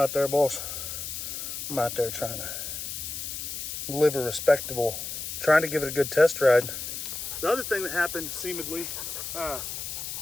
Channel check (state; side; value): noise; left; hiss, 6 dB below the sound